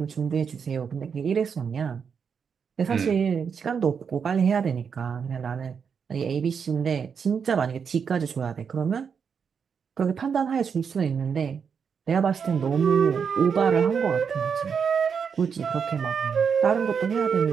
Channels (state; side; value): quieter; left; 6.5 dB